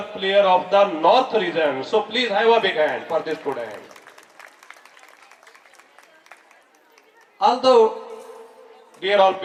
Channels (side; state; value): both; identical; correlation 1.00